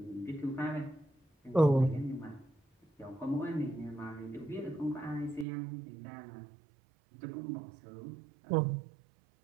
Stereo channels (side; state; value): left; drops out; at 5.5 s